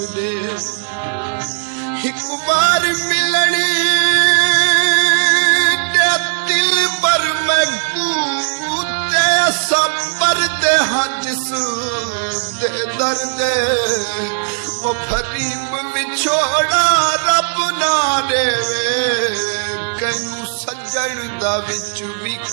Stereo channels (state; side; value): silent; left; 56 dB below the other